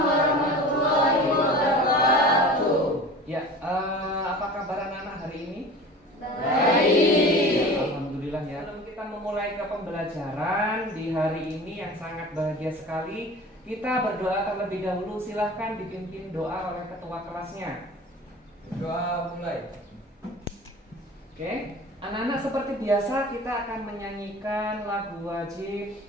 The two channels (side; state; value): both; normal; correlation 0.39